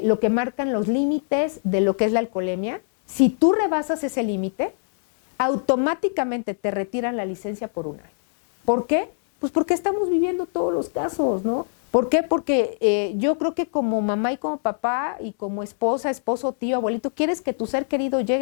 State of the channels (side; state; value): right; silent; digital silence